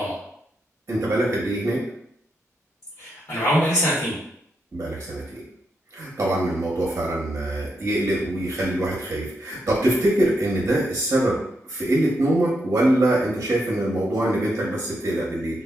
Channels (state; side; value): normal; both; correlation 0.81